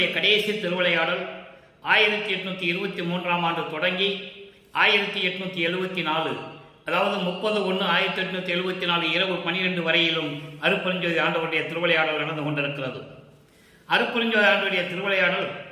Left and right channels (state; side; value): identical; both; correlation 1.00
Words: கடைசி திருவிளையாடல் 1823ஆம் ஆண்டு தொடங்கி 1874, அதாவது 30/1/1874 இரவு 12 வரையிலும் அருட்பெருஞ்சோதி ஆண்டவருடைய திருவிளையாடல் நடந்து கொண்டிருக்கிறது. அருட்பெருஞ்சோதி ஆண்டவருடைய திருவிளையாடல்